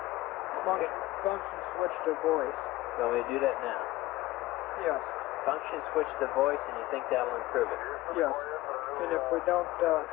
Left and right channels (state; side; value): quieter; right; 17.8 dB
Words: Function switch to voice. So we do that now. Yes. Function switch to voice, and you think that'll improve it? Yes. And if we don't,